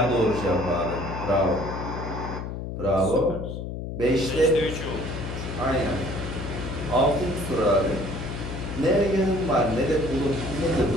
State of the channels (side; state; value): left; noise; hum, 6 dB below the sound